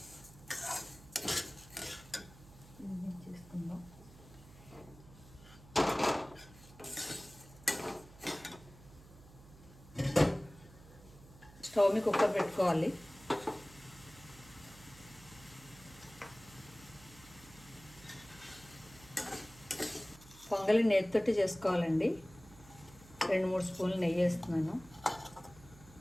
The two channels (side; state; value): right; noise; hum, 20 dB below the sound